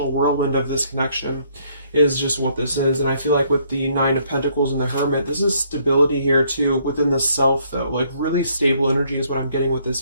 whirlwind of this connection, is just what this is. And I feel like with the Nine of Pentacles and the Hermit, this is stability here too within the self, though. Like really stable energy is what I'm getting with this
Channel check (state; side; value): inverted; both; correlation -0.67